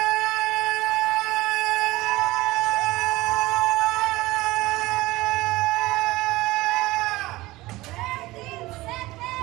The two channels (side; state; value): left; quieter; 19.1 dB